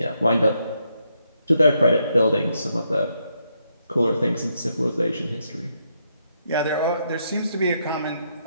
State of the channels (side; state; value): both; inverted; correlation -0.78